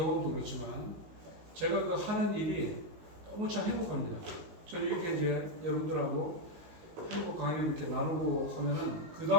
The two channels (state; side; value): late; left; 19 ms